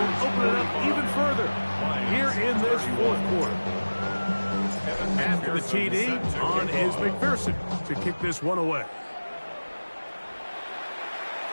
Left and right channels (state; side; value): inverted; both; correlation -1.00